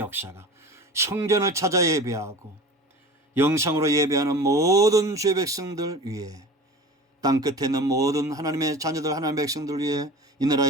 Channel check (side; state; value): both; normal; correlation 0.37